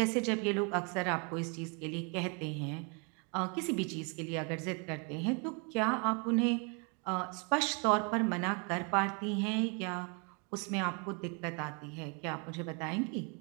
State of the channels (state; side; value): quieter; left; 35.2 dB